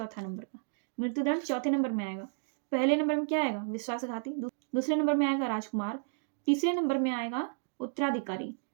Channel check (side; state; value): left; silent; digital silence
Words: नंबर का। मृत्युदंड 4थे नंबर में आएगा। पहले नंबर में क्या आएगा? विश्वासघाती। दूसरे नंबर में आएगा राजकुमार। तीसरे नंबर में आएगा उत्तराधिकारी